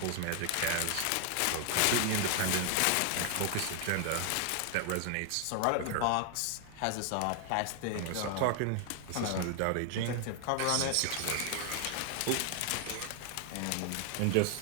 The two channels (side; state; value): both; different; correlation 0.00